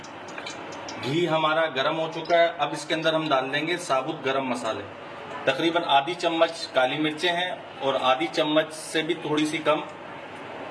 घी हमारा गर्म हो चुका है। अब इसके अंदर हम डाल देंगे साबुत गरम मसाले। तकरीबन आधी चम्मच काली मिर्चें हैं और आधी चम्मच से भी थोड़ी सी कम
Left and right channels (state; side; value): identical; both; correlation 1.00